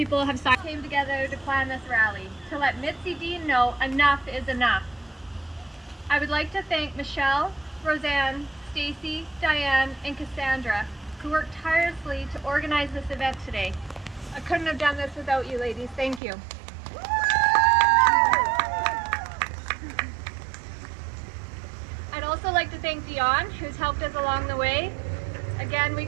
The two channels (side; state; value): left; drops out; at 16.2 s